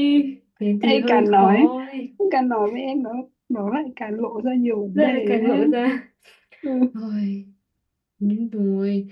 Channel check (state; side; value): identical; both; correlation 1.00